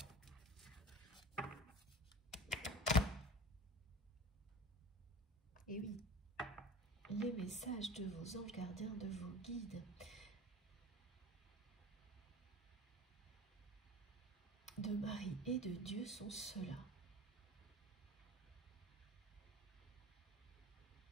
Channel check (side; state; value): both; normal; correlation 0.37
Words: Et oui, les messages de vos anges gardiens, de vos guides, de Marie et de Dieu sont ceux-là.